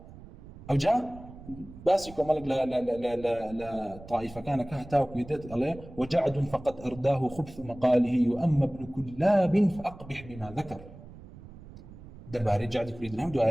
أو جاء باسكو ملك لا طائفة كان كهتاو كيدت عليه وجعد فقد أرداه خبث مقاله وأما ابن كلاب فأقبح بما ذكر دباري جعد كريد الهم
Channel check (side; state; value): right; noise; rumble, 18 dB below the sound